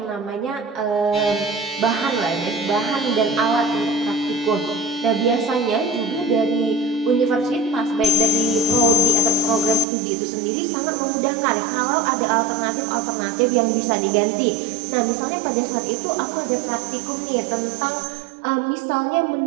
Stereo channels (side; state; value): left; drops out; at 9.9 s